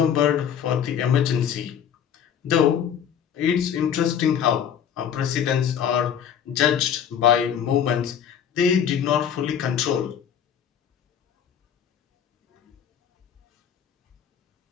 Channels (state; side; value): quieter; right; 8.6 dB